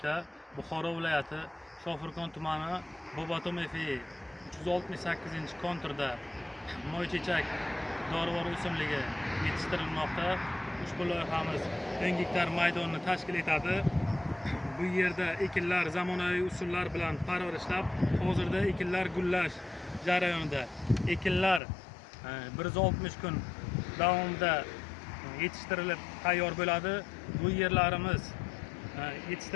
Buxoro viloyati Shofirkon tumani Bobotom FI 368-konturda moychechak dorivor o'simligi yetishtirilmoqda. Ushbu loyihamiz 10 gektar maydonni tashkil etadi. Bu yerda ekinlar zamonaviy usullar bilan parvarishlab, hozirda ekinlar gullash jarayonida. Ekinlar 160 kun davomida yetishtirilib tayyor bo'ladi. Bu yerlarimiz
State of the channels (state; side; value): drops out; right; at 21.6 s